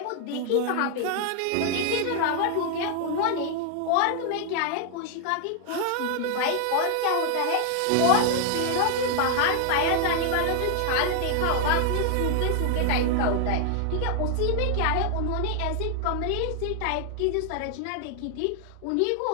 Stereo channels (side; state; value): both; different; correlation 0.00